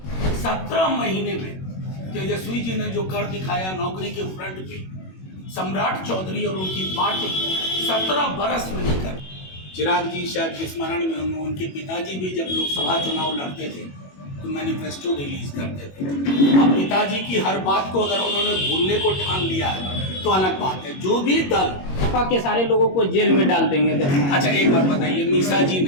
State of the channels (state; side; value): late; right; 21 ms